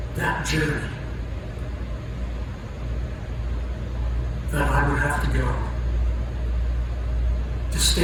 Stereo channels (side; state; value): both; identical; correlation 1.00